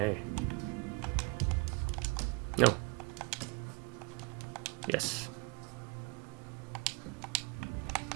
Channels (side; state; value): left; quieter; 28.4 dB